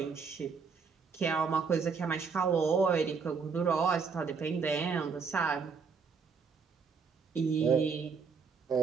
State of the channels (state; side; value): quieter; left; 5.4 dB